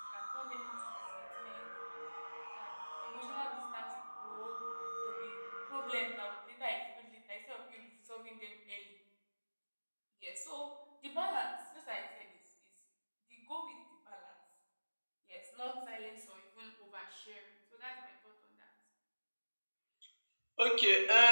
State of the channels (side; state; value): both; inverted; correlation -1.00